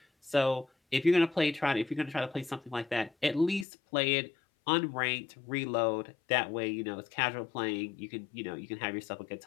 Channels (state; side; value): drops out; right; at 3.7 s